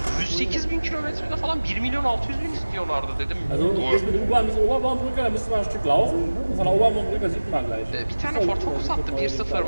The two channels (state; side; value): inverted; both; correlation -1.00